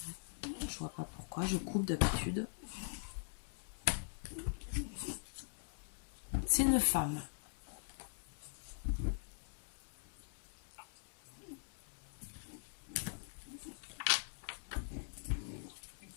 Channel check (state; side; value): silent; right; digital silence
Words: Je vois pas pourquoi. Je coupe d'habitude. C'est une femme.